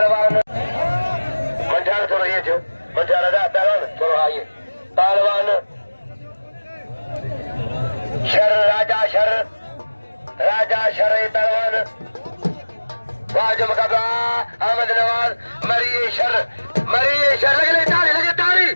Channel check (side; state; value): both; inverted; correlation -1.00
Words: मंझार थोड़ा ये जो मंझार आजा पहलवान थोड़ा आइए पहलवान शर राजा शर पहलवान वाजम मुकाबला अहमद नवाज मरीए शर लगे तारी